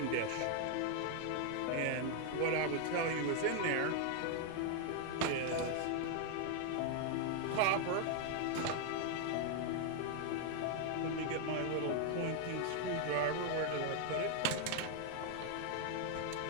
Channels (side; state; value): both; different; correlation 0.00